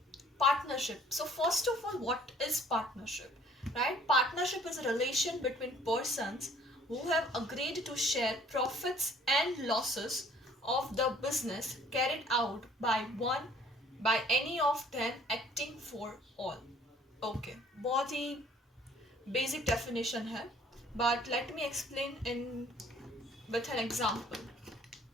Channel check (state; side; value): normal; both; correlation 0.56